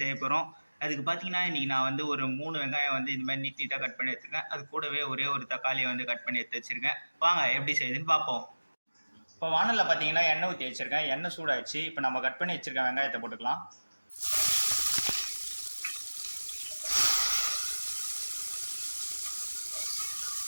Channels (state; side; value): inverted; both; correlation -1.00